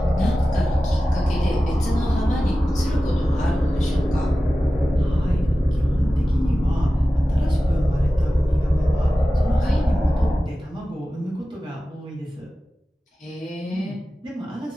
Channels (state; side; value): normal; both; correlation 0.95